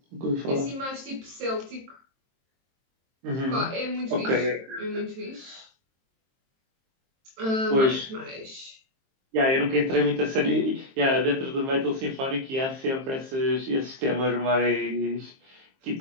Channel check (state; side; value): late; left; 23 ms